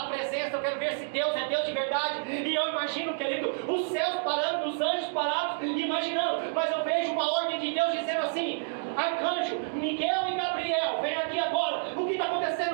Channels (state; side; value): silent; left; digital silence